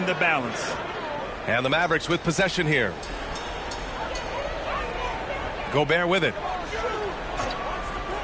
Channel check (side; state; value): both; identical; correlation 1.00